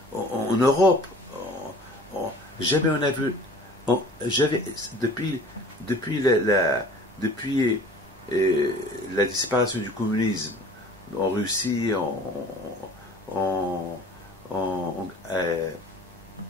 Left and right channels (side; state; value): both; normal; correlation 0.47